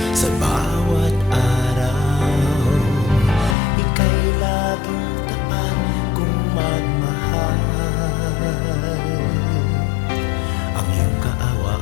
sa bawat araw, ika'y laging tapat kong magmahal. Ang iyong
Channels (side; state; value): right; drops out; at 3.6 s